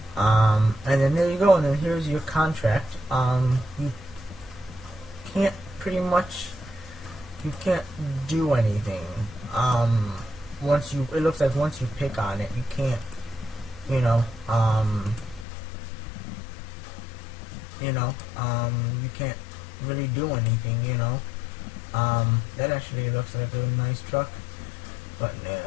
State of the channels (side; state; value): right; drops out; at 15.5 s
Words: and then there you go. And then here's your contract. You can't you can't do anything. It looks like once you pick on it, you can't, you can't really do anything, that actually looks like a nice truck, but